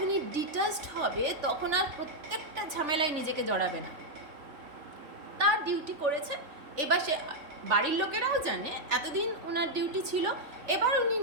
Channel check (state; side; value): late; left; 3.4 ms